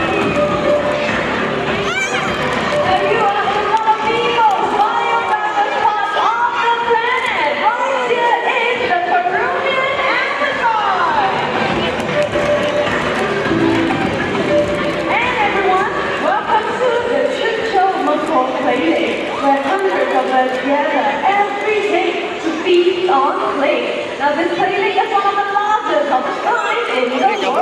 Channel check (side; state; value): both; identical; correlation 1.00